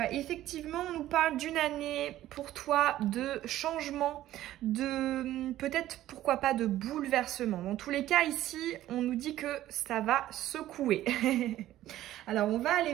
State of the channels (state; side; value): quieter; left; 13.9 dB